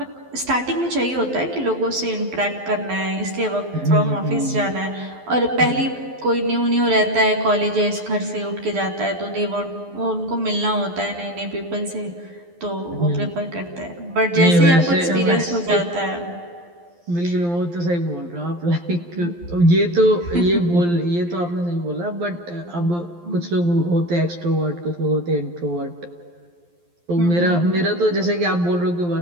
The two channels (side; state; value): left; late; 12 ms